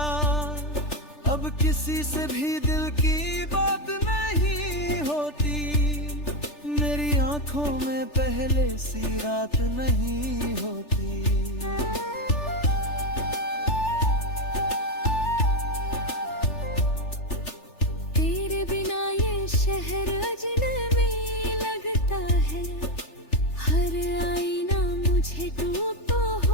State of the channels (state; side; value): late; right; 3.4 ms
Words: अब किसी से भी दिल की बात नहीं होती, मेरी आंखों में पहले सी रात नहीं होती। तेरे बिना ये शहर अजनबी लगता है, हर आईना मुझे टूटा